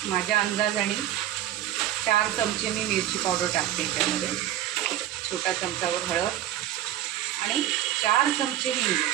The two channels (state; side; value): quieter; left; 12.7 dB